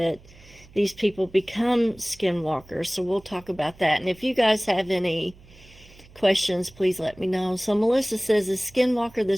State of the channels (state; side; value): noise; right; hum, 24 dB below the sound